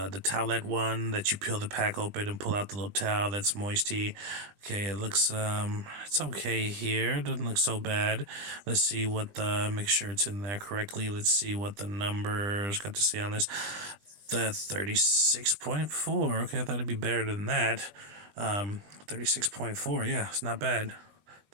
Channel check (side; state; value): left; late; 20 ms